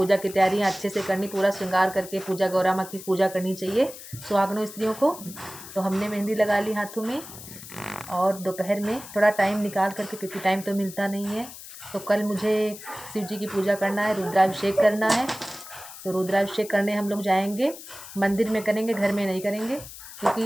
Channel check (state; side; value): noise; left; hiss, 14 dB below the sound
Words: की तैयारियां अच्छे से करनी, पूरा श्रृंगार करके पूजा, गौरा माँ की पूजा करनी चाहिए सुहागनों स्त्रियों को। तो हमने मेहंदी लगा ली हाथों में। और दोपहर में थोड़ा टाइम निकाल करके, क्योंकि टाइम तो मिलता नहीं है, तो कल मुझे शिव जी की पूजा करना है, रुद्राभिषेक करना है। तो रुद्राभिषेक करने हम लोग जाएंगे, मंदिर में करेंगे, घर में नहीं करेंगे,